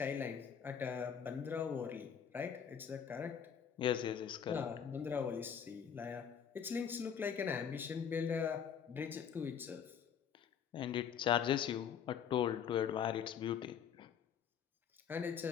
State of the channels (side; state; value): right; quieter; 7.9 dB